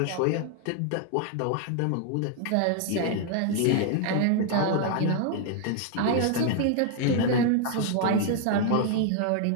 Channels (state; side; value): different; both; correlation 0.00